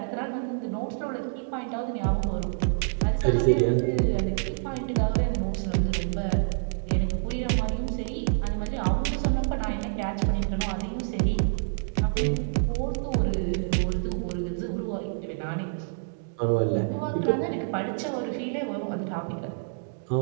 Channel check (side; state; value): left; silent; digital silence